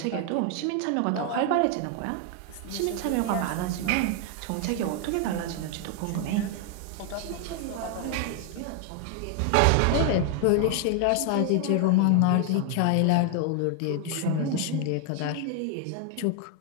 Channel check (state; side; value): different; both; correlation 0.00